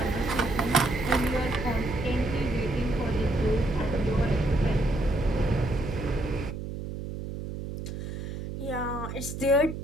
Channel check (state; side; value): noise; right; hum, 7 dB below the sound